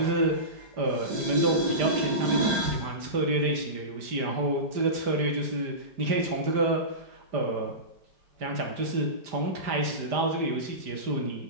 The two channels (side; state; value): left; late; 5.0 ms